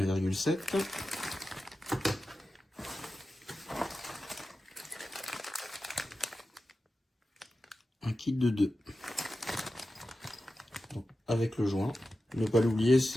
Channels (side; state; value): both; normal; correlation 0.92